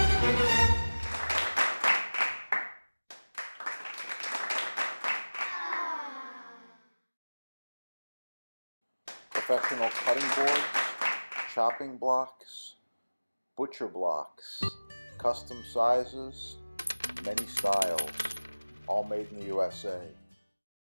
Professional cutting boards, chopping blocks, butcher blocks, custom sizes, many styles, all made in the USA.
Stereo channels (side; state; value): both; inverted; correlation -1.00